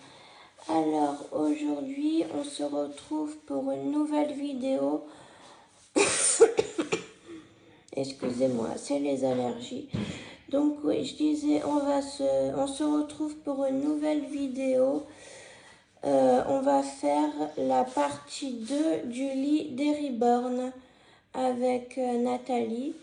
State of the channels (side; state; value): both; identical; correlation 1.00